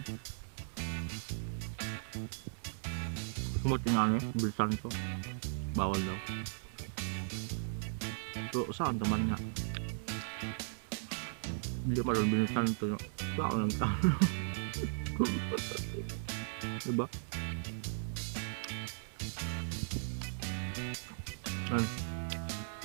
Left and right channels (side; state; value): left; silent; digital silence